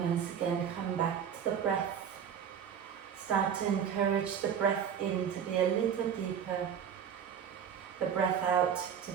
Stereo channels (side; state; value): left; quieter; 8.1 dB